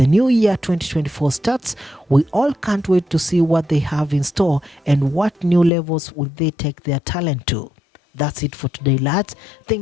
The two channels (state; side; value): drops out; right; at 5.7 s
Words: new year 2024 starts, we all can't wait to see what they have in store and what new levels will they take their talent to. That's it for today, lads.